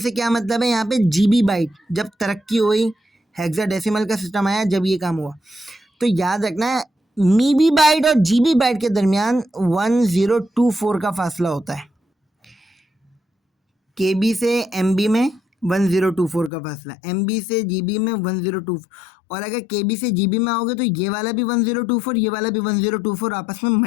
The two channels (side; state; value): right; drops out; at 16.5 s